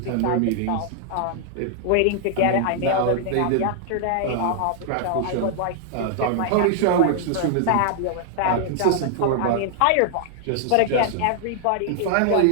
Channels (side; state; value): both; different; correlation -0.01